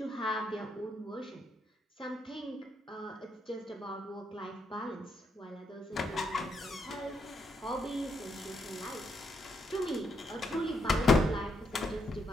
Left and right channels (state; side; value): normal; both; correlation 0.78